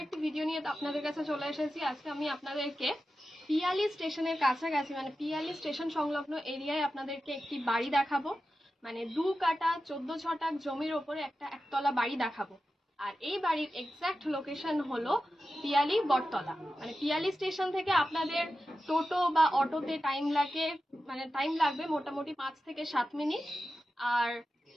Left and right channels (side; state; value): both; normal; correlation 0.92